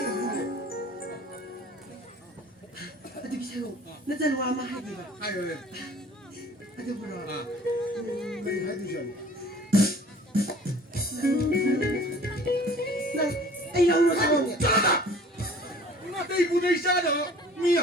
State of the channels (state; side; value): normal; both; correlation 0.49